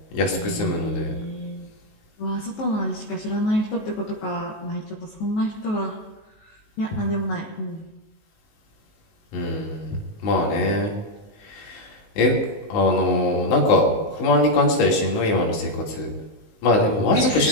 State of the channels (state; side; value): late; right; 19 ms